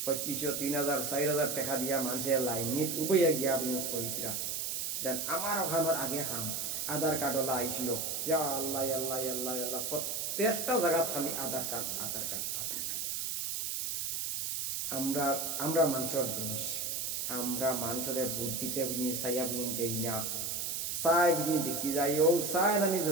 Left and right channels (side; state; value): right; noise; hiss, 2 dB below the sound